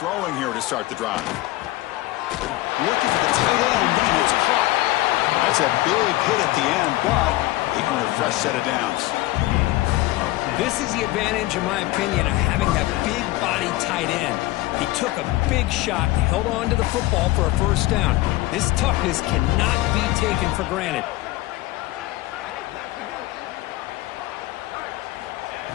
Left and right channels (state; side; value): quieter; right; 18.2 dB